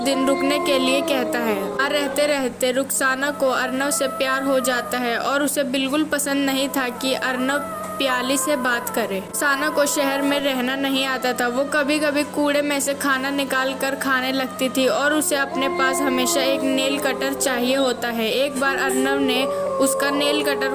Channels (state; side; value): identical; both; correlation 1.00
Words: रुकने के लिए कहता है। रहते रहते रुखसाना को अर्नव से प्यार हो जाता है और उसे बिल्कुल पसंद नहीं था कि अर्नव प्याली से बात करे। रुखसाना को शहर में रहना नहीं आता था। वो कभी कभी कूड़े में से खाना निकाल कर खाने लगती थी और उसे अपने पास हमेशा एक नेल कटर चाहिए होता है। एक बार अर्नव ने उसका नेल कटर